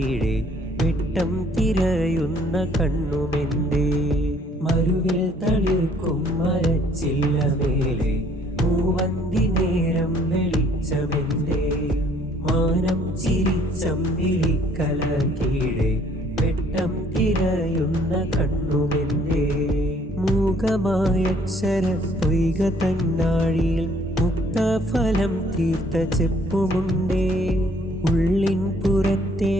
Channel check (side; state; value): both; normal; correlation 0.61